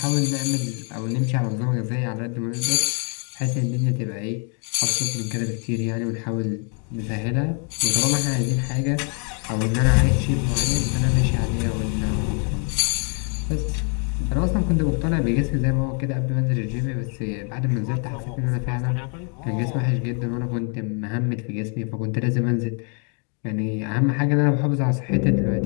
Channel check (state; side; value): quieter; right; 39.8 dB